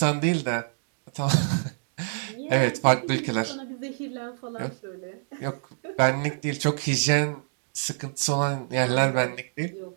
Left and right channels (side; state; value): left; silent; digital silence